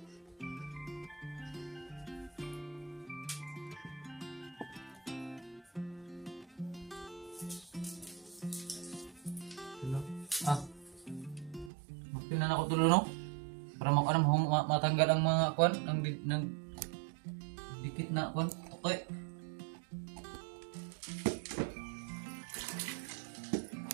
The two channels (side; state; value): left; drops out; at 11.7 s